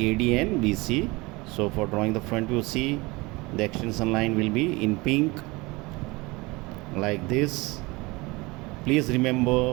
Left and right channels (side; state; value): left; quieter; 23.7 dB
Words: and BC. So for drawing the front view, see, the extension line will be in pink like this. Please